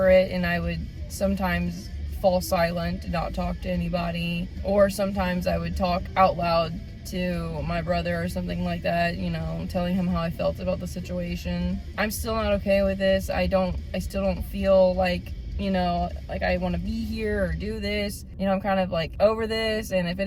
it, and I would sometimes fall silent, not talk to anybody, or sometimes I would talk out loud to my brother or something like that, you know, telling him how I felt about the situation. I'm still not okay with this. I still don't feel like, you know, like I want to be here or do this. You know, I'm kind of like over this, and if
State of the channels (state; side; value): identical; both; correlation 1.00